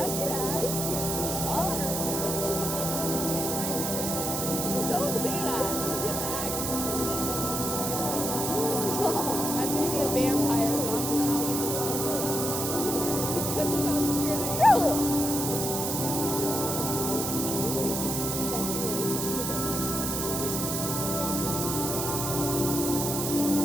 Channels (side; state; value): right; noise; hiss, 2 dB below the sound